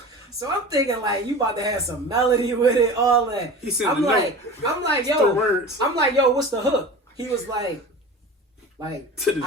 So I'm thinking like, you about to have some melody with it, all that. He said, I'm like, yo, what's the hook? He was like, I feel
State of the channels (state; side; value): normal; both; correlation 0.34